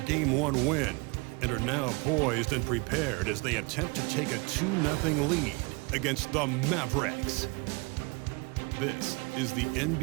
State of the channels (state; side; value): quieter; left; 28.7 dB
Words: 1 win and are now poised and prepared as they attempt to take a 2-0 lead against the Mavericks. This is the